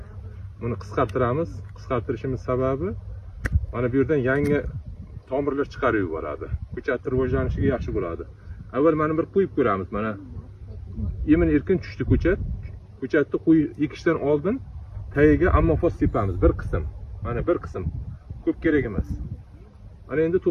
buni qisqartiramiz. Qisqartirishimiz sababi mana bu yerdan yangi tomirlar chiqarib yuboradi. Ko'chatning rivojlanishiga yaxshi bo'ladi. Avval mana bir qo'yib ko'ramiz. Mana yemin erkin tushdi ko'chat. Ko'chatni ekishdan oldin tagiga ammofos sepamiz bir qism. Mana bir qism. Ko'p kerak emas. Mana endi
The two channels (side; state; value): both; identical; correlation 1.00